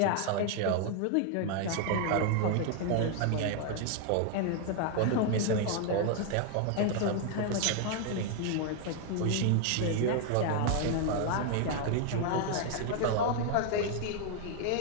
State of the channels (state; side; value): different; both; correlation 0.00